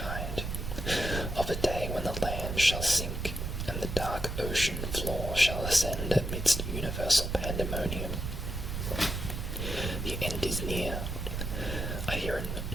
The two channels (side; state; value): right; noise; rumble, 4 dB below the sound